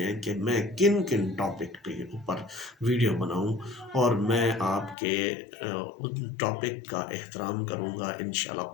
ہیں کہ میں کن کن ٹاپک پہ اوپر ویڈیو بناؤں، اور میں آپ کے ان ٹاپک کا احترام کروں گا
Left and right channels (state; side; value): drops out; right; at 5.0 s